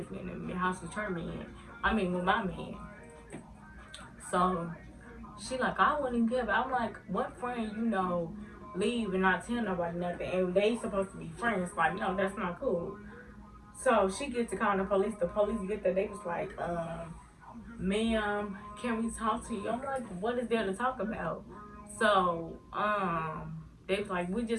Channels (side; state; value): both; identical; correlation 1.00